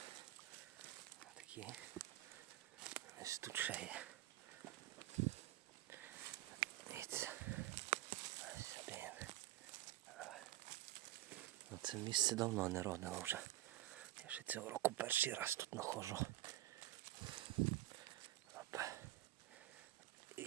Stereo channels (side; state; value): left; quieter; 15.3 dB